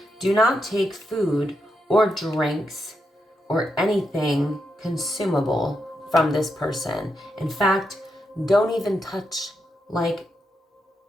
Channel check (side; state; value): both; normal; correlation 0.84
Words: Do not take food or drinks or anything consumable from this person. In fact, don't even